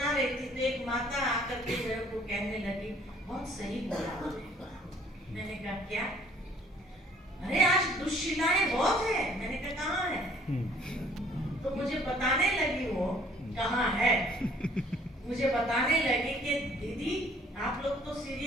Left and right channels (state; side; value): normal; both; correlation 0.58